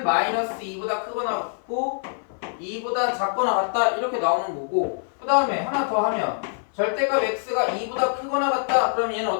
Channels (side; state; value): right; silent; 59 dB below the other